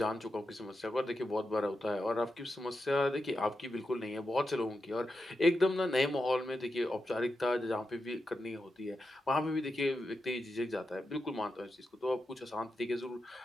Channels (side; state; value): both; normal; correlation 0.88